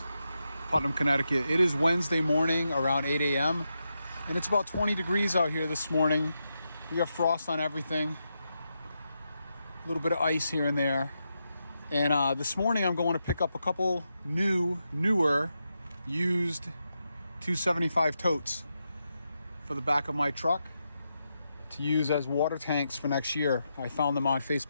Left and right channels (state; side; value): inverted; both; correlation -0.86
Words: Putnam, Connecticut. It is Wednesday morning around 8 a.m. and it's about 20 degrees out here this morning. We have frost on everything, a little bit of ice here and there. And this morning I'm going to pick up a couple newer, used 275 totes for the back of my truck to use as water tanks for next year. I found them on